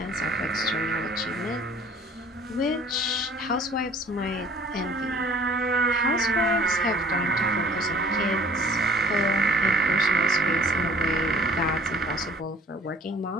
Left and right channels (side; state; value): both; normal; correlation 0.52